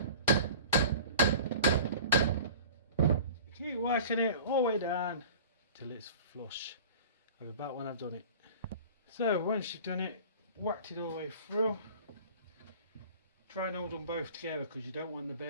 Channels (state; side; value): inverted; both; correlation -0.42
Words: Keep whacking it all the way down till it's flush. I'll be back when I've done it. So once you've done it, whacked it all the way through, try and hold them both together, because you don't want the